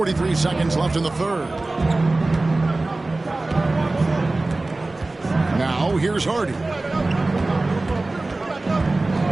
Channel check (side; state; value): left; quieter; 3.0 dB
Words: seconds left in the third. Now here's Hardy.